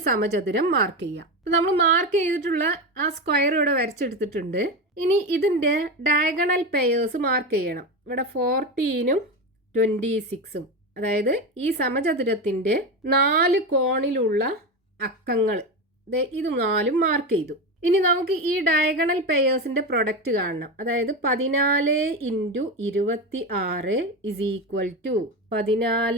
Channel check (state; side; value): normal; both; correlation 0.18